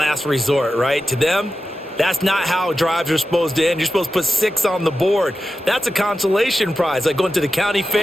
resort, right? To them, that's not how drives are supposed to end. You're supposed to put 6 on the board. That's a consolation prize. Like going to the county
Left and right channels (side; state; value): both; normal; correlation 0.92